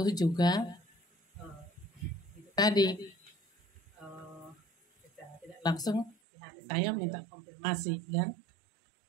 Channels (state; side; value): drops out; left; at 6.2 s